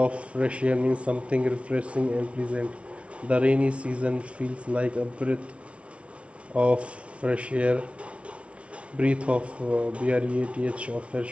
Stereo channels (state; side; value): late; left; 0.061 ms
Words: fresh air means something refreshing and pleasant. The rainy season feels like a breath of fresh air. Breath of breath of